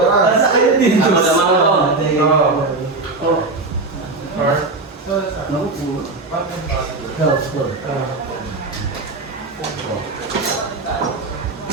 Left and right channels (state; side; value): quieter; left; 3.4 dB